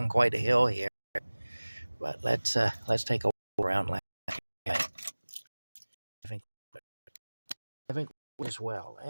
quite a hill here, but let's take a walk around Lanark. I think as well.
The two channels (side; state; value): both; inverted; correlation -1.00